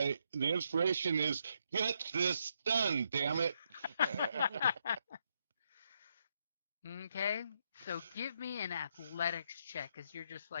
The inspiration is, get this done, damn it. Okay, so give me an athletics check, because you're just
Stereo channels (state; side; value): inverted; both; correlation -0.77